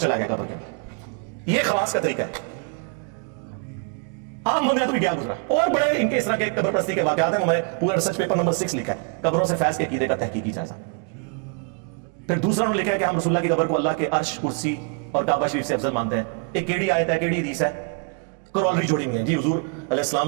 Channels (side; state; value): left; quieter; 35.1 dB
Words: गया कब्र के अंदर। ये खवास का तरीका है। आम बंदे तो भी क्या गुजरा। और बड़े इनके इस तरह के कब्र प्रस्ती के वाकयात हैं। मैंने पूरा रिसर्च पेपर नंबर 6 लिखा है, कब्रों से फैज के अकीदे का तहकीकी जायजा। फिर दूसरा उन्होंने लिखा है कि हम रसूलुल्लाह की कब्र को अल्लाह के अर्श, कुर्सी और काबा शरीफ से अफजल मानते हैं। एक केड़ी आयत है, केड़ी हदीस है, करॉलरी जोड़ी हुई है जी। हुजूर